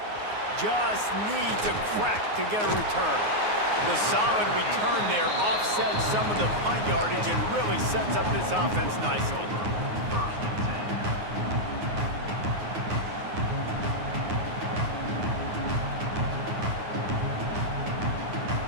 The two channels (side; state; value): left; late; 9.5 ms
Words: Just needs a crack to get a return. The solid return there offsets some of the punt yardage and really sets up this offense nicely.